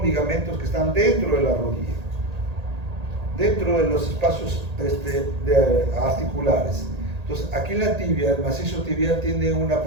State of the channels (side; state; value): left; late; 1.8 ms